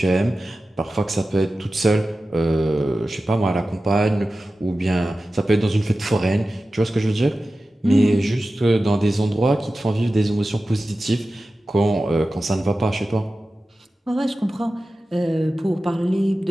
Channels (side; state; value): both; normal; correlation 0.94